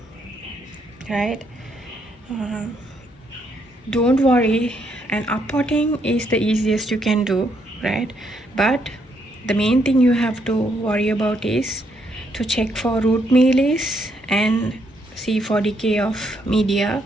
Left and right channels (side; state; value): both; normal; correlation 0.74